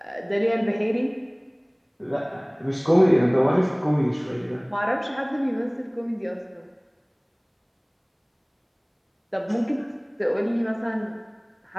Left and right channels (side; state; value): both; identical; correlation 1.00